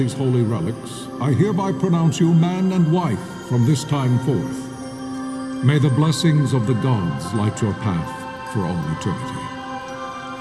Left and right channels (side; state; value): both; identical; correlation 1.00